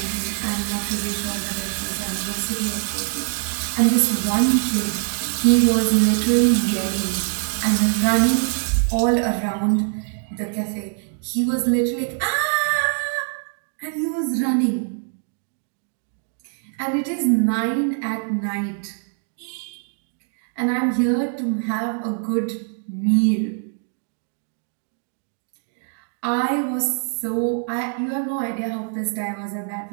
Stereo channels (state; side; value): silent; left; 58 dB below the other